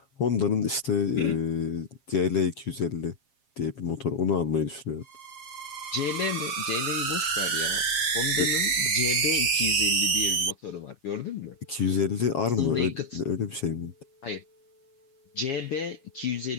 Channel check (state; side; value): late; right; 7.4 ms